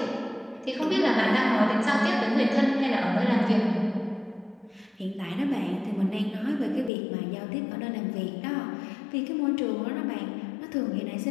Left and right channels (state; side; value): drops out; right; at 6.9 s